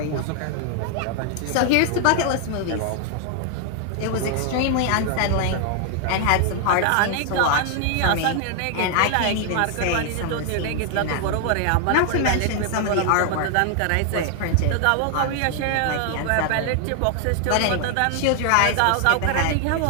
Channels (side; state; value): both; different; correlation 0.00